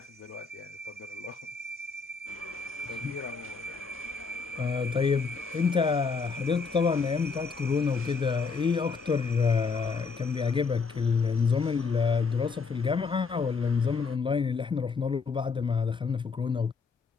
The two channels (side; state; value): right; quieter; 5.0 dB